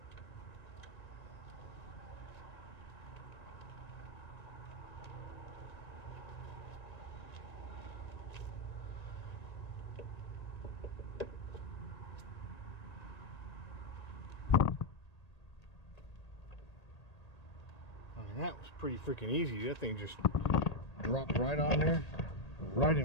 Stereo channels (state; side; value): late; right; 1.8 ms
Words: pretty freaking easy. That thing just dropped right on there, right